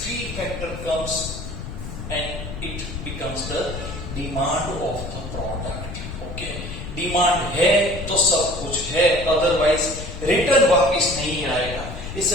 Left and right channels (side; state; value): left; noise; rumble, 9 dB below the sound